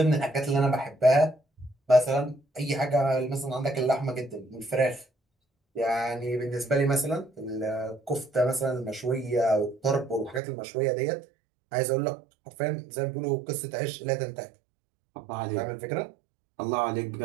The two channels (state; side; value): drops out; left; at 10.4 s